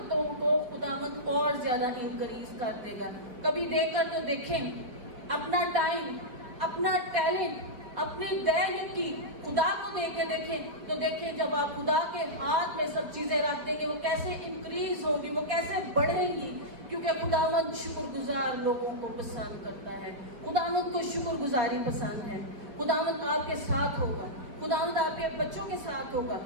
کو خداوند اور زیادہ انکریز کر دے گا۔ کبھی دے کر تو دیکھیں، اپنا ٹائم، اپنا ٹیلنٹ، اپنی دینکی خدا کو دے کے دیکھیں، تو دیکھیں جب آپ خدا کے ہاتھ میں سب چیزیں رکھ دیں گے وہ کیسے انکریز ہوں گی، وہ کیسے بڑھیں گی، کیونکہ خداوند شکر گزار لوگوں کو پسند کرتا ہے۔ خداوند کو شکر گزاری پسند ہے۔ خداوند آپ کے ساتھ ہوگا، خداوند آپ کے بچوں کے ساتھ ہوگا،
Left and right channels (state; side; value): late; left; 4.8 ms